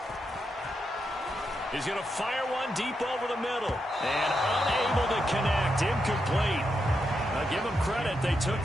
He's going to fire one deep over the middle. And unable to connect. Incomplete. Now give them credit. They took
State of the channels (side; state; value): both; normal; correlation 0.84